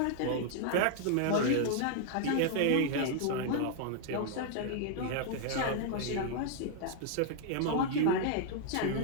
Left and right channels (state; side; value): different; both; correlation 0.00